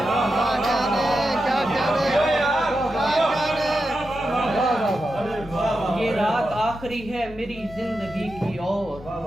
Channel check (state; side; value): normal; both; correlation 0.89